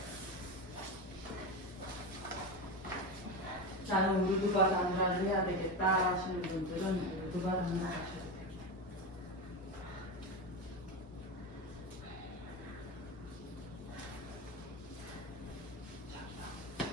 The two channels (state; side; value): normal; both; correlation 0.18